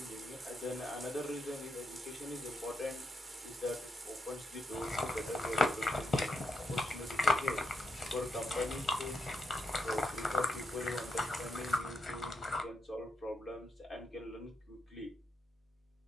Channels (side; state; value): both; normal; correlation 0.80